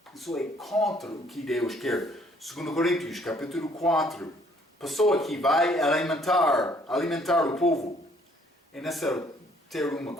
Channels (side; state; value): both; normal; correlation 0.63